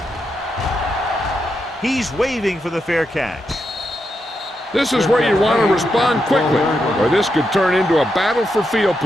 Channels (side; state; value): both; normal; correlation 0.84